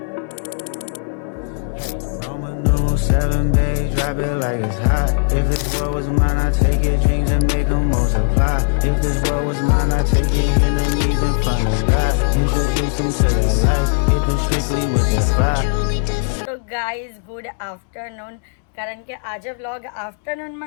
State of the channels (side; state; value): right; silent; digital silence